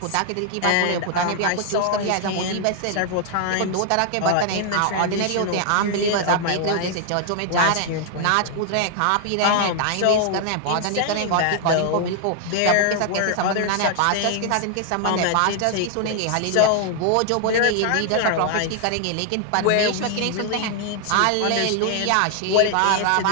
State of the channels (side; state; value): both; different; correlation 0.00